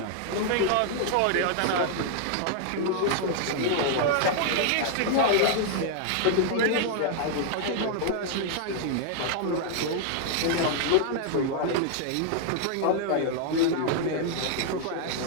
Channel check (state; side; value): different; both; correlation 0.00